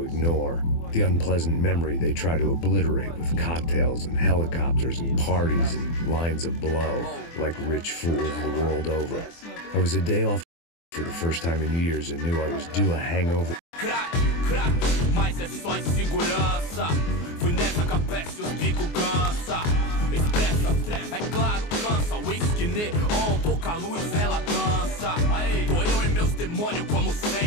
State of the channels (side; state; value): right; late; 24 ms